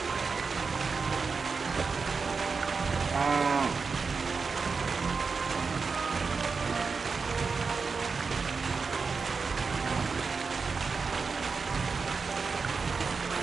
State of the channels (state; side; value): quieter; left; 4.9 dB